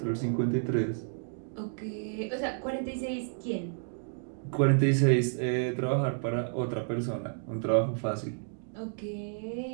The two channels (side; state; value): left; silent; digital silence